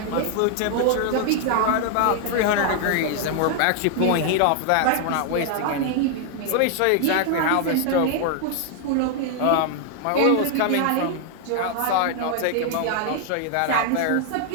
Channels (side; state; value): both; different; correlation 0.00